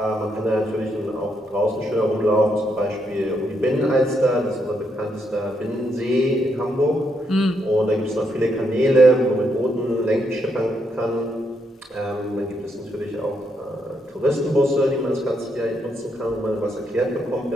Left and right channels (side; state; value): both; normal; correlation 0.78